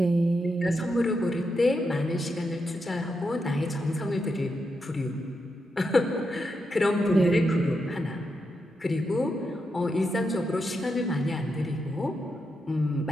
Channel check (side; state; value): both; normal; correlation 0.84